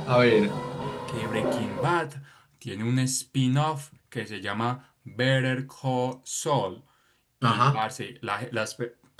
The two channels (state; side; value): identical; both; correlation 1.00